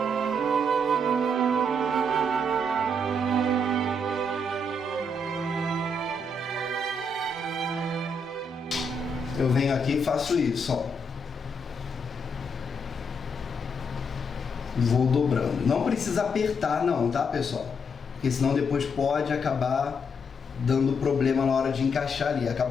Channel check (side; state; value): both; normal; correlation 0.77